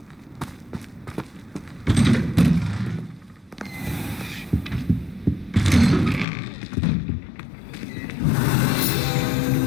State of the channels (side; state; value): right; drops out; at 6.2 s